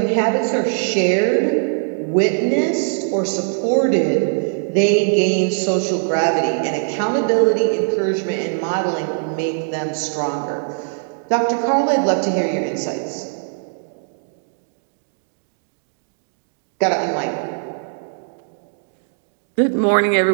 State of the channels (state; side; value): silent; left; 65 dB below the other